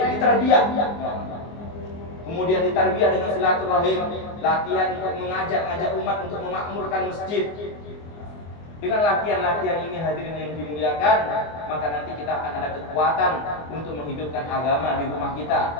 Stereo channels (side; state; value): right; late; 24 ms